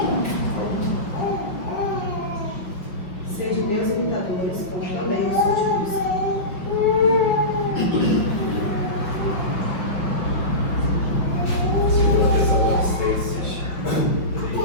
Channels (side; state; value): right; late; 5.5 ms